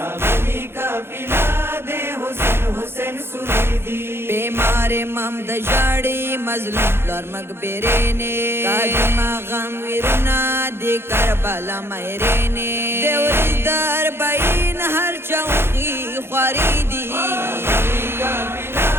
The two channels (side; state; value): left; late; 0.11 ms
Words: का पिला दे हुसैन हुसैन सुरीदी। बीमार इमाम दजाड़ी मजलूम लर मकबरे ने, कादिमा गम विरुना दे करबला मेरे ने, देवरी दर बाइन हर चौकी ख्वारीदी, रागली का पिला